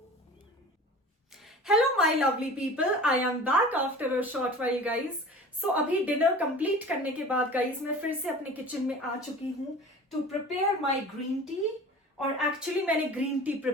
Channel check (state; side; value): normal; both; correlation 0.40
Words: Hello my lovely people, I am back after a short while guys. So अभी डिनर कंप्लीट करने के बाद गाइज मैं फिर से अपने किचन में आ चुकी हूँ to prepare my green tea. और एक्चुअली मैंने ग्रीन टी